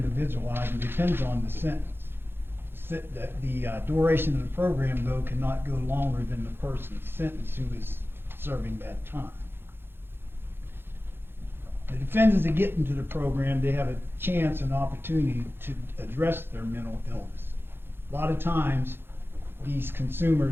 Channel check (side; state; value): left; late; 0.11 ms